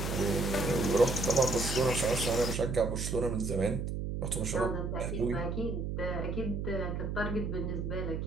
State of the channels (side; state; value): right; noise; hum, 3 dB below the sound